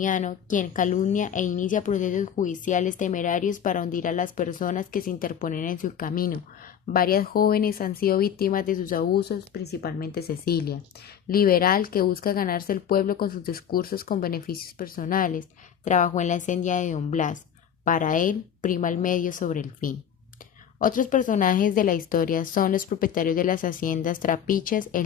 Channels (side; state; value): right; quieter; 8.7 dB